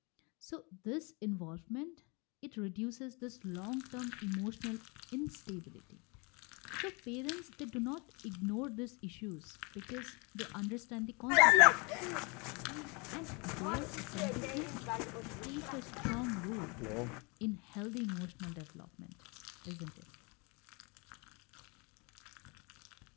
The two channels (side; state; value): right; quieter; 30.3 dB